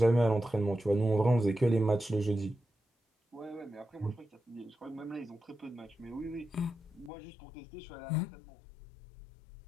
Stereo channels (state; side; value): drops out; right; at 7.1 s